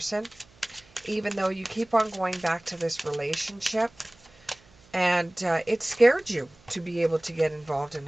even though you keep on going back to this relationship, and it scared you to be able to get involved in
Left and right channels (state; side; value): noise; right; hum, 28 dB below the sound